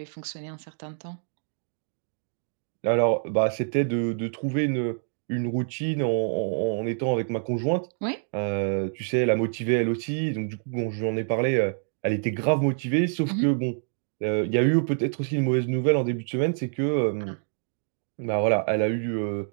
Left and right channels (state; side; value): silent; left; digital silence